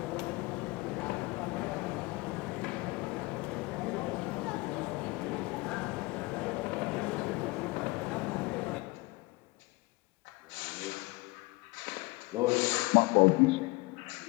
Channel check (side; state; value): right; quieter; 23.7 dB